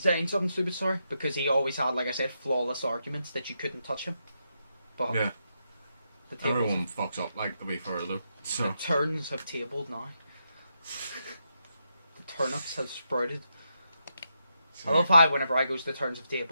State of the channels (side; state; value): both; inverted; correlation -0.83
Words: something stupid, sorry. Because he always had, like I said, flawless arguments that you couldn't touch him. But yeah. Everyone fucks up, like, to be fair, though. So. The turns have tabled now. The turnips have sprouted. I love how whenever I goes the turns have